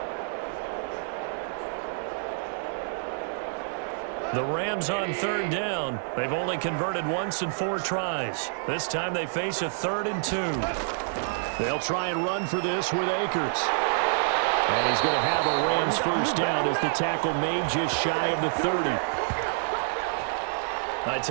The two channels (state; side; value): silent; left; digital silence